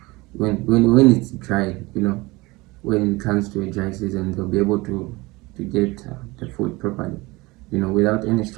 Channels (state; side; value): quieter; left; 22.5 dB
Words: when it's dry, when it comes to a dry season, they'll be able to get the food properly, without any